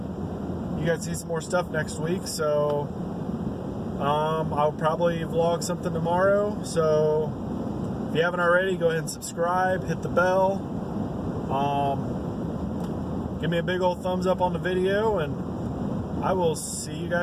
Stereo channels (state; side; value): identical; both; correlation 1.00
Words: guys see some more stuff next week. So I'll probably vlog something tomorrow. So if you haven't already, go ahead and subscribe, hit the bell, give me a big old thumbs up on the video, and I will see you